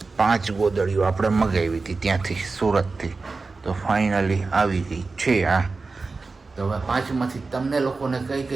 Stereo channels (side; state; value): left; quieter; 4.0 dB